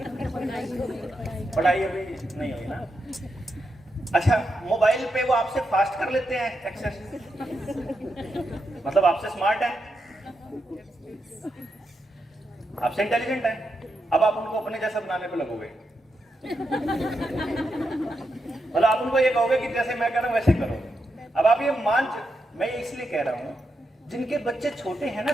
पढ़ाई अभी नहीं हुई ना? अच्छा, मोबाइल पे वो आपसे फास्ट कर लेते हैं एक्सेस, मतलब आपसे स्मार्ट है, आपसे इंटेलिजेंट है, अब आप उनको अपने जैसा बनाने पे लगोगे, मतलब आप उनको ये कहोगे कि जैसे मैं कह रहा हूं वैसे करो। अब आप ये मैं ये इसलिए कह रहा हूं, जिनके बच्चे छोटे हैं ना,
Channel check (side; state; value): both; normal; correlation 0.85